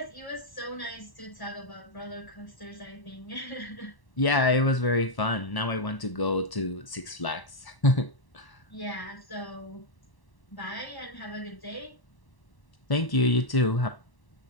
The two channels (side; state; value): right; late; 1.0 ms